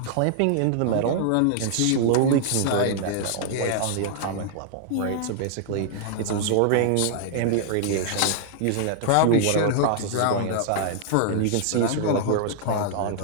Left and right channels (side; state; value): both; different; correlation -0.01